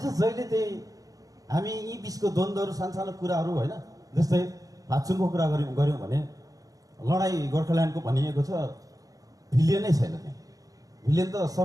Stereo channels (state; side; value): late; left; 0.17 ms